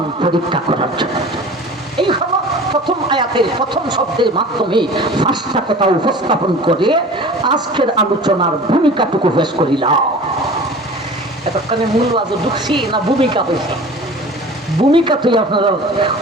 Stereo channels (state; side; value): normal; both; correlation 0.40